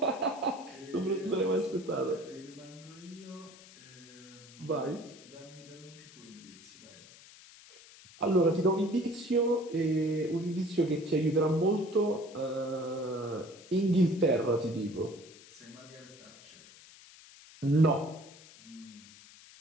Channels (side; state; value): left; noise; hiss, 21 dB below the sound